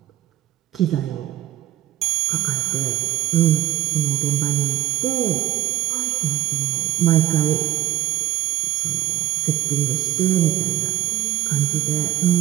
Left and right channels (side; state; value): left; quieter; 13.6 dB